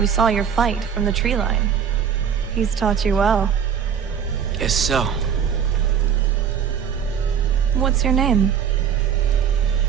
saw your fight from the tree line. He's taught you well. Guess so. What's your name?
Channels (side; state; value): left; quieter; 7.9 dB